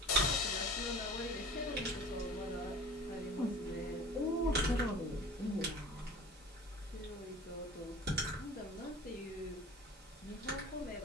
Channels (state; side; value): normal; both; correlation 0.41